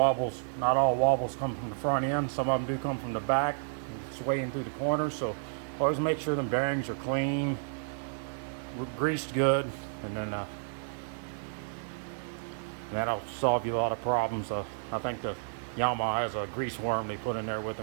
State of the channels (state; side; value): silent; left; digital silence